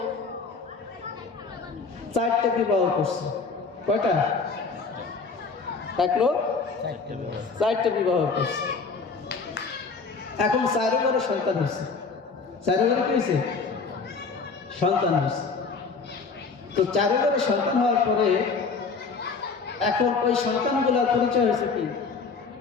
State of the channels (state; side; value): quieter; right; 4.7 dB